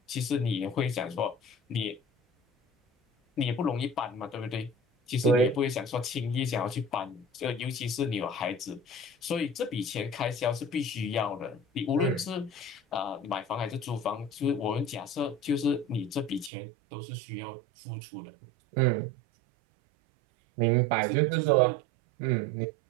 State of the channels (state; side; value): drops out; left; at 16.5 s